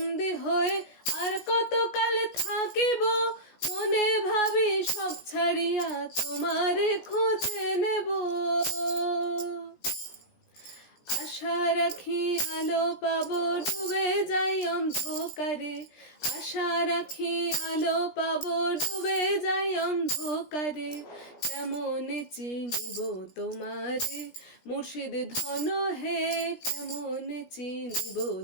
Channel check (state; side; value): late; right; 17 ms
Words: হয়ে আর কত কাল থাকিব। মনে ভাবি সব ছাড়িয়া তোমারে খুঁজে নেব। আশা রাখি আলো পাবো, ডুবে যাই অন্ধকারে। আশা রাখি আলো পাবো, ডুবে যাই অন্ধকারে। কেমন চিনিব তোমারে মুর্শিদ ধন হে, কেমন চিনিব